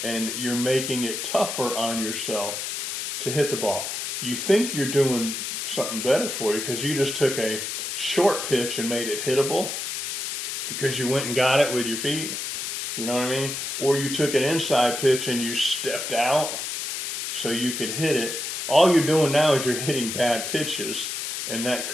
and you're making it tougher on yourself to hit the ball. You think you're doing something better for you because you just took a short pitch and made it hittable because you went and got it with your feet. You know what I mean? Or you took an inside pitch and you stepped out so you could hit it. All you're doing now is you're hitting bad pitches, and that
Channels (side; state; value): left; noise; hiss, 4 dB below the sound